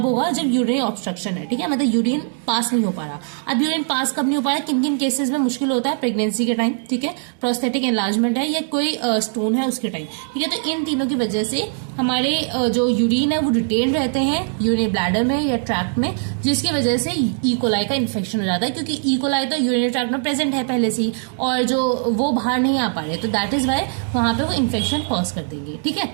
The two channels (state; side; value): silent; left; digital silence